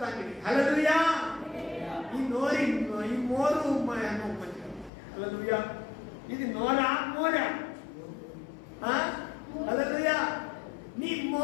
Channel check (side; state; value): right; drops out; at 4.9 s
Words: హల్లెలూయా. ఈ మోరు. హల్లెలూయా. ఇది నోరా మోరా? హల్లెలూయా. నీ